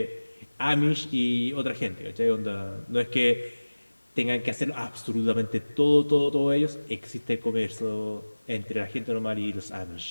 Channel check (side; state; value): both; inverted; correlation -1.00